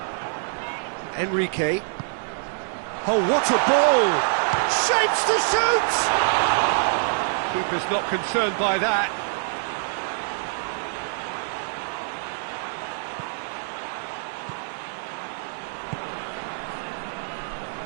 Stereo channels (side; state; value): left; silent; 62 dB below the other